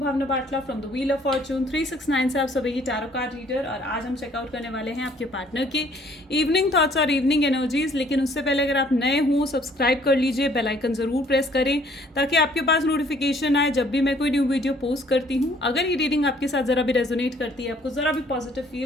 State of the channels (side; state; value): both; normal; correlation 0.60